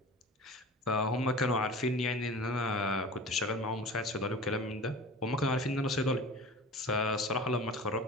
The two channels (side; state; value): both; normal; correlation 0.37